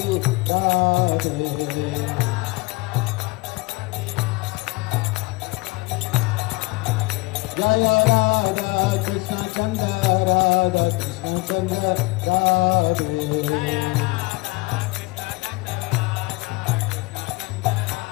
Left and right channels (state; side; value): quieter; right; 24.1 dB